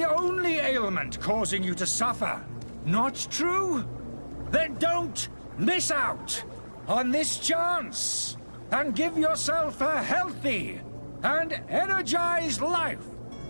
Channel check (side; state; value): both; inverted; correlation -1.00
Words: only ailment causing you to suffer. Not true? Then don't miss out on this chance and give yourself a healthy and energized life.